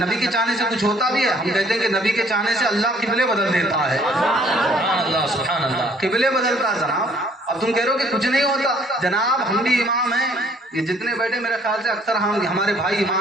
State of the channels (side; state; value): both; normal; correlation 0.60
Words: کے چاہنے سے کچھ ہوتا بھی ہے. ہم کہتے ہیں کہ نبی کے چاہنے سے اللہ قبلے بدل دیتا ہے. سبحان اللہ. قبلے بدلتا ہے جناب. اب تم کہہ رہے ہو کہ کچھ نہیں ہوتا. جناب ہم بھی امام ہیں، یہ جتنے بیٹھے میرے خیال سے اکثر ہمارے بھائی